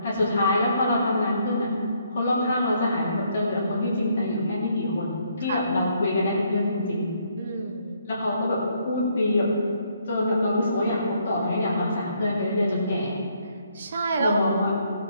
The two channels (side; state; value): both; inverted; correlation -0.70